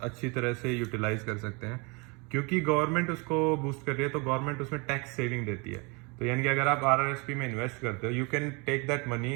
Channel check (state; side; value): quieter; left; 29.7 dB